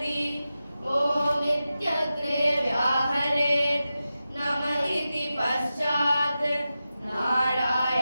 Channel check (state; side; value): inverted; both; correlation -0.92